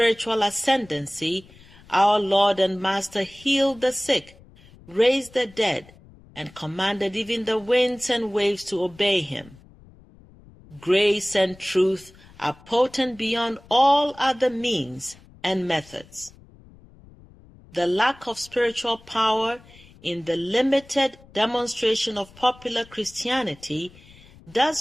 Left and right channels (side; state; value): left; noise; rumble, 24 dB below the sound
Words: ascendancy, our Lord and Master healed the sick, raised the dead, and commanded even the winds and waves to obey him. Grace and truth are potent beyond all other means and methods. The lack of spiritual power in the limited demonstration of popular Christianity